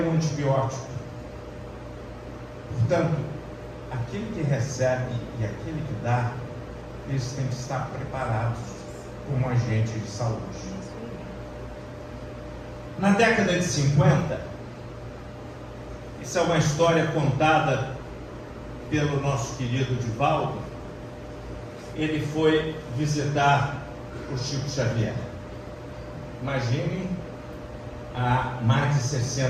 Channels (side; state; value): both; identical; correlation 1.00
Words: antibiótico. Portanto, aquele que recebe e aquele que dá, eles têm que estar preparados como agente de saúde. Na década de 50, isso é uma história contada pelo nosso querido Divaldo. Ele foi visitar o Chico Xavier. Imaginem, há mais de